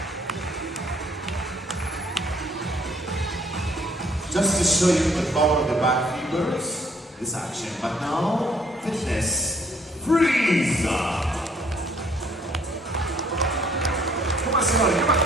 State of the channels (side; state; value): both; normal; correlation 0.63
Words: Just to show you the power of the back fibers, this action. But now, fitness, freeze! Come on, Simone, come on.